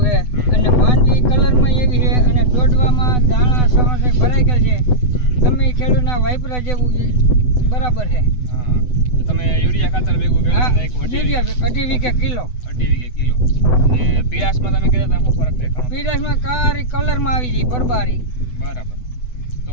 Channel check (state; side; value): late; right; 8.0 ms